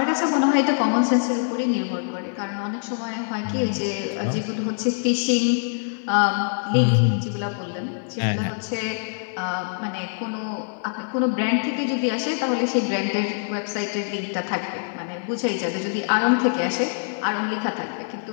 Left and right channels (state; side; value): silent; right; 62 dB below the other